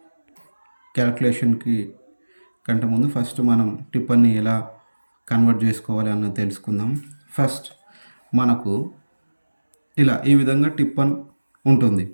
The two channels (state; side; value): inverted; both; correlation -1.00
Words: క్యాల్కులేషన్కి కంటే ముందు ఫస్ట్ మనం టిప్పన్ని ఎలా కన్వర్ట్ చేసుకోవాలి అన్నది తెలుసుకుందాం. ఫస్ట్ మనకు ఇలా ఈ విధంగా టిప్పన్ ఉంటుంది.